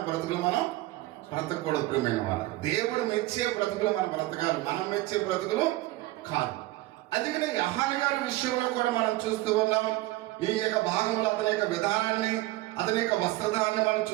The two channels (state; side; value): quieter; left; 18.2 dB